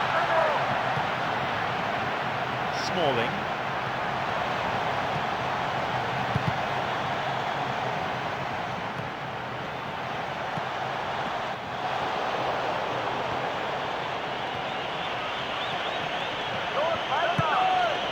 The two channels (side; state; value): both; identical; correlation 1.00